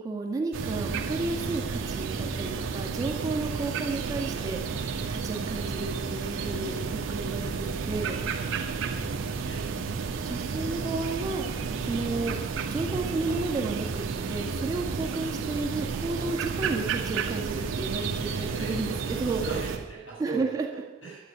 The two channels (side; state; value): left; quieter; 4.0 dB